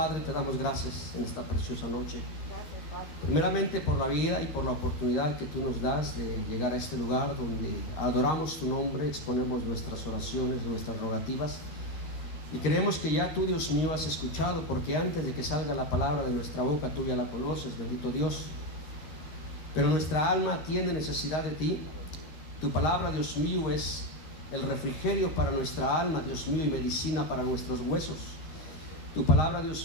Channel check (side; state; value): right; late; 13 ms